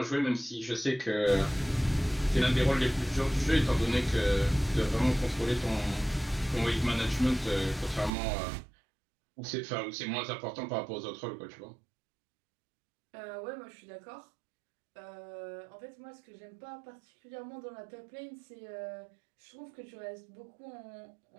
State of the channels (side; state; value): left; drops out; at 8.1 s